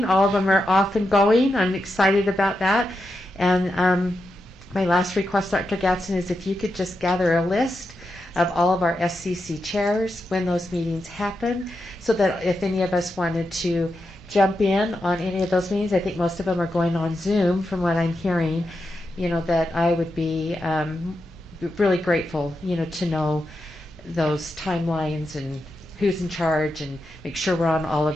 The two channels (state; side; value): normal; both; correlation 0.87